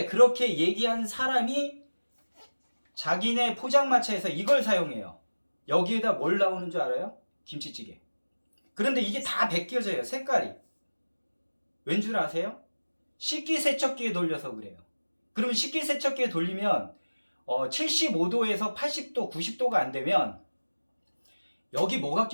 그렇게 얘기한 사람이 자기네 포장마차에서 이걸 사용해요. 여기에다 뭘 나오는 줄 알아요? 김치찌개. 그런데 이게 다 벗겨져요. 색깔이. 왠 줄 아세요? 식기세척기에 돌려서 그래요. 그러면 식기세척기에 돌리면 75도에서 80도, 90도가 안 되면 여기 뭐가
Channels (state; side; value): inverted; both; correlation -1.00